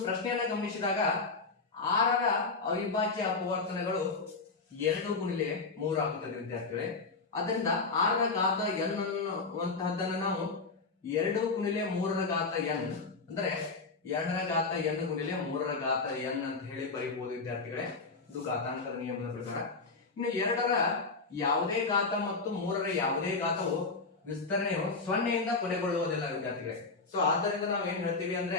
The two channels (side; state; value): right; quieter; 4.1 dB